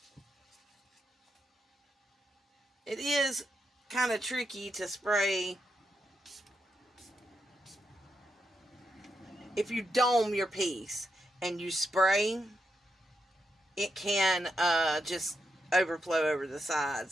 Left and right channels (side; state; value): both; normal; correlation 0.84